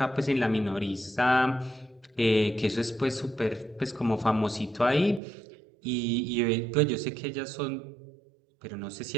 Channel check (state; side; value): drops out; left; at 5.2 s